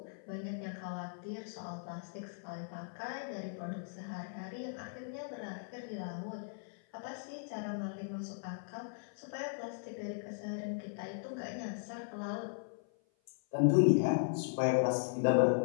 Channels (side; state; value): right; silent; 53 dB below the other